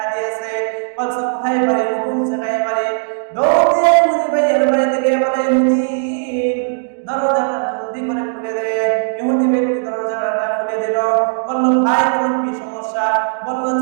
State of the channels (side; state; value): left; silent; digital silence